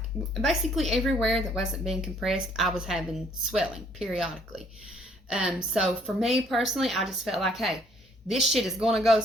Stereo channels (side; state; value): both; normal; correlation 0.63